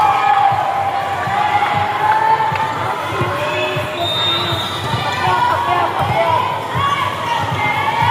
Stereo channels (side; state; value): both; identical; correlation 1.00